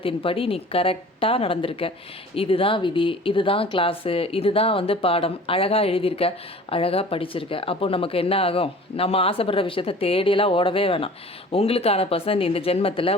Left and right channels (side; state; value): both; normal; correlation 0.44